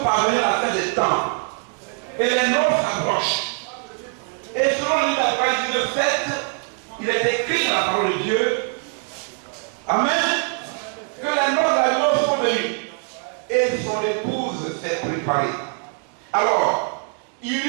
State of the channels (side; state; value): left; quieter; 39.9 dB